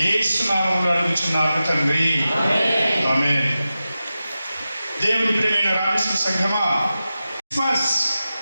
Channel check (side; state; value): both; inverted; correlation -0.93